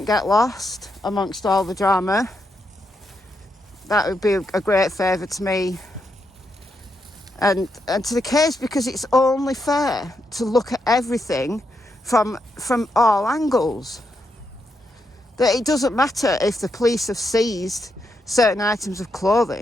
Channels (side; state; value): both; normal; correlation 0.82